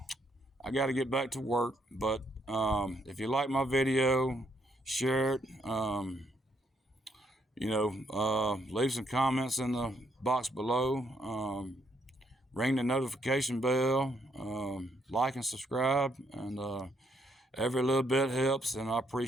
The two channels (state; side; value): normal; both; correlation 0.73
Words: got to get back to work. But if you like my video, share it. Leave some comments in the box below. Ring the notification bell. Like and subscribe. And every little bit helps, and I